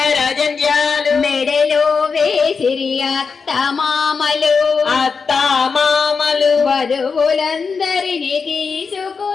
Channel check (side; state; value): right; quieter; 5.2 dB